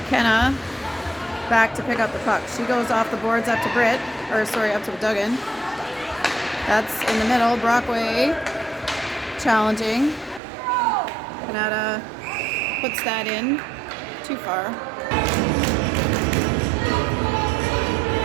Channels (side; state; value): left; drops out; at 10.4 s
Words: back to pick up the puck. She goes off the boards up to up to Duggan. That's in the middle. Brockway challenging. Kanata puts that in. Too far.